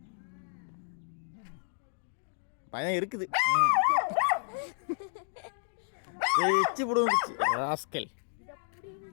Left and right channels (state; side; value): silent; right; digital silence